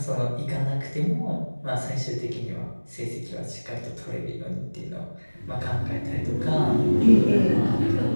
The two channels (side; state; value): both; inverted; correlation -1.00